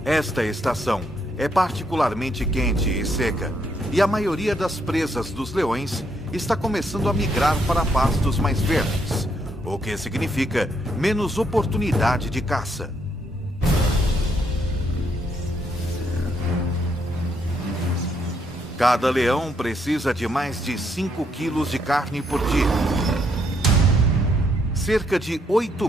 Esta estação é particularmente quente e seca, e a maioria das presas dos leões está começando a migrar para pastos mais verdes, o que significa menos oportunidade de caça. Cada leão precisa de mais de 5 quilos de carne por dia. Cerca de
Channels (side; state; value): both; normal; correlation 0.74